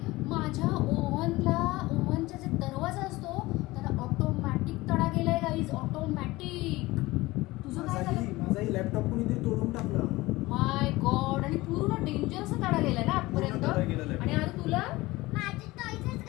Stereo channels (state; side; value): quieter; right; 19.9 dB